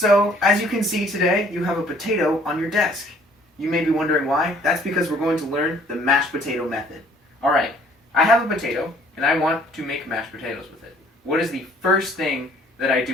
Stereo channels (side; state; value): both; normal; correlation 0.58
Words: as you can see today, you have a potato on your desk. You may be wondering why. That's because we're going to learn the mashed potato method. Alright, I have a potato, and I want to make mashed potatoes with it. What is the first thing that I